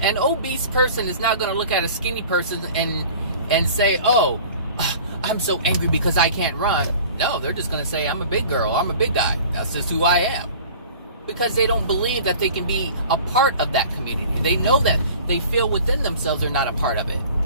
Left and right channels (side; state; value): both; inverted; correlation -0.44